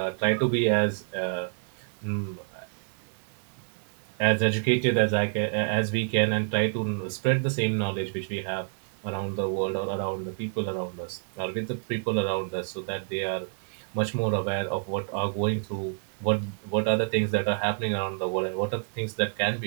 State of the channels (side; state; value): left; silent; 59 dB below the other